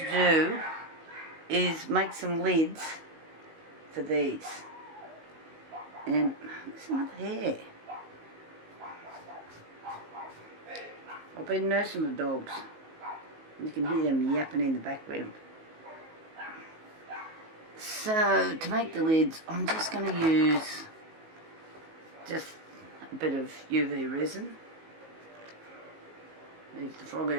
do is make some lids for these. And there's another hair. I've been nursing the dogs. You can hear them yapping in the background. So, to make the lids, I'm just going to use just a bit of UV resin. Move the frog out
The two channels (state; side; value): late; left; 19 ms